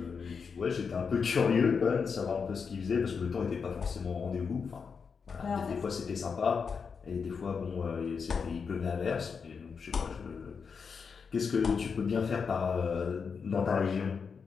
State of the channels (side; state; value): right; quieter; 5.7 dB